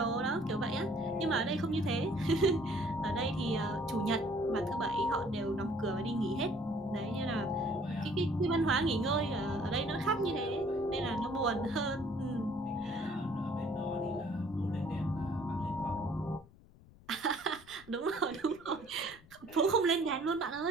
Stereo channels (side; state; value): left; noise; rumble, 23 dB below the sound